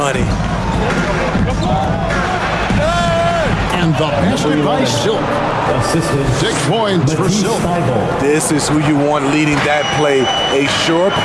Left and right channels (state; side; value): identical; both; correlation 1.00